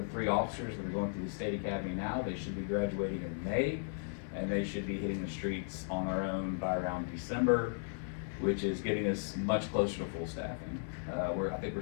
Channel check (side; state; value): right; silent; digital silence